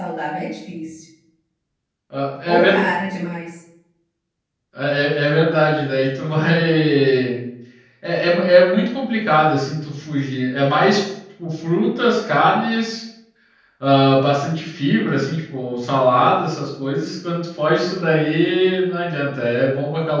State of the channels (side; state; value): both; identical; correlation 1.00